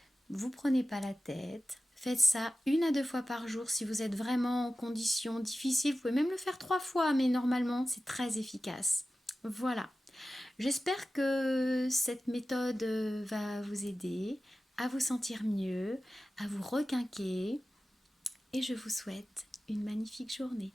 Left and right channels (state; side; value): normal; both; correlation 0.94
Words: Vous prenez pas la tête. Faites ça 1 à 2 fois par jour si vous êtes vraiment en conditions difficiles. Vous pouvez même le faire 3 fois, mais normalement, c'est très efficace. Voilà. J'espère que cette méthode va vous aider à vous sentir mieux, à vous requinquer. Et je vous souhaite une magnifique journée.